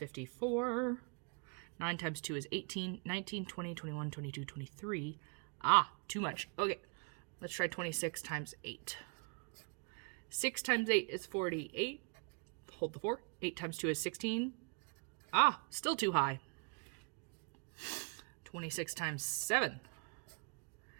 9 times 2 is 18, 19, 20, 21, 22, 23. Ah, too much. Okay, let's try 26 times 8. 6 times 8 is 48. Hold the 4. 8 times 2 is 16. Ah, still too high. 26 times 7.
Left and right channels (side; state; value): left; quieter; 38.1 dB